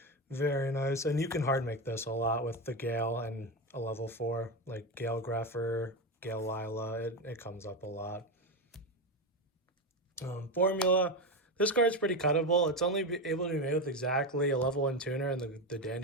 very nice, and you can hard make this a lot with the Gale and a level 4, like Gale Greffer, Gale Lila. It comes up a lot. Formula. This card's pretty cuttable. It's only able to be made with exactly a level 1 tuner and the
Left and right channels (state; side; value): normal; both; correlation 0.14